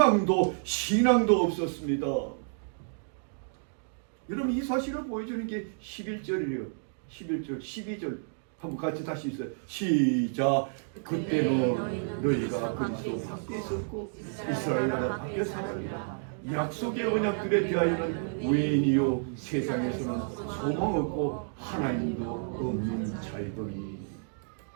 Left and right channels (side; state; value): left; silent; digital silence